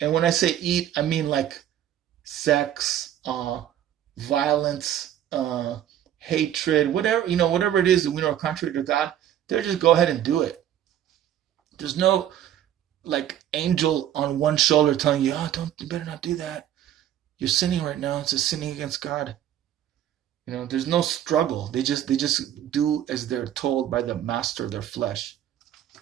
And when I say eat, I mean like sex, violence, hatred, whatever it is that we know are contrary to God, they'll just go ahead and do it. There's no like angel on one shoulder telling you, oh, don't, you better not do that. You're sinning right now. It's a sinning against God. There's no struggle. They just do as they're told by the master of their flesh.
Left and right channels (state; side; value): quieter; left; 11.1 dB